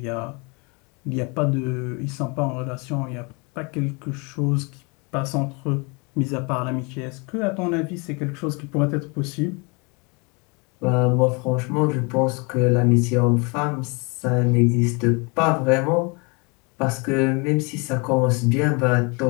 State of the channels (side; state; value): right; quieter; 30.8 dB